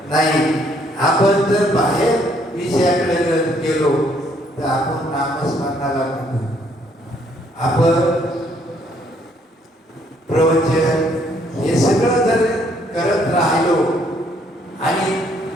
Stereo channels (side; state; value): both; normal; correlation 0.67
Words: नाही. आपण जर बाहेर विषयाकडे गेलो तर आपण नामस्मरणाला म्हणतो. आपण प्रवचन हे सगळं जर करत राहिलो आणि